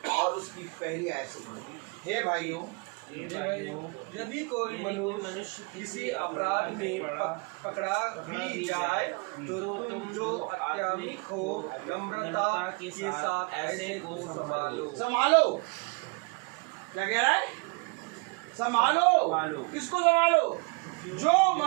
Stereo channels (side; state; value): left; quieter; 31.3 dB